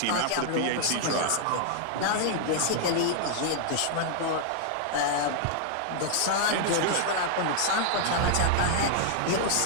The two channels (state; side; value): different; both; correlation -0.01